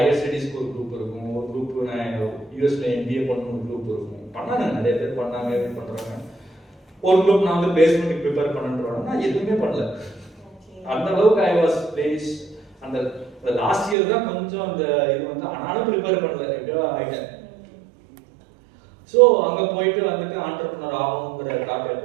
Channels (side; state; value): left; drops out; at 14.0 s